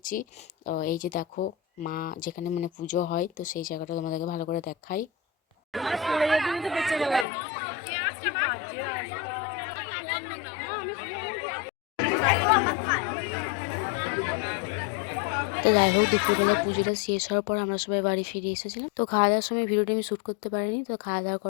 এই যে দেখো মা যেখানে মানে পুজো হয়, তো সেই জায়গাটা তোমাদেরকে ভালো করে দেখাই। তো যাই হোক, দুপুরবেলা পুজোটা শেষ হওয়ার পর আমরা সবাই বাড়ি ফিরে এসেছিলাম। তো খাওয়া দাওয়ার সময় ভিডিওটি আমি শ্যুট করতে পারিনি। তো খাওয়া দাওয়া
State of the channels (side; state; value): right; drops out; at 7.2 s